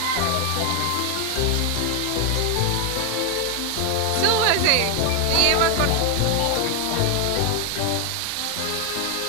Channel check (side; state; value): both; different; correlation 0.01